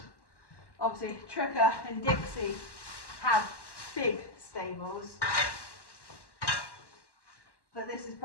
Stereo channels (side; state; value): right; late; 1.1 ms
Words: Obviously Tricker and Dixie have big stables, but this is